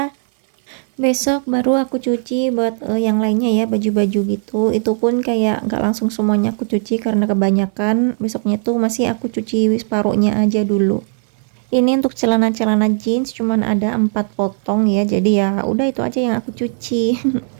Besok baru aku cuci buat yang lainnya ya, baju-baju gitu. Itu pun kayak nggak langsung semuanya aku cuci karena kebanyakan. Besoknya tuh masih aku cuci separuhnya aja dulu. Ini untuk celana-celana jeans cuman ada 4 potong ya. Jadi ya udah itu aja yang aku cuci.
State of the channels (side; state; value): left; silent; 60 dB below the other